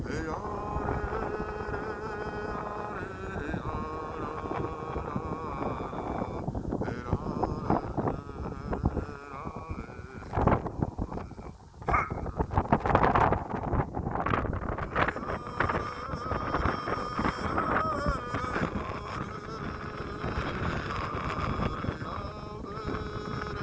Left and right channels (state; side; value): identical; both; correlation 1.00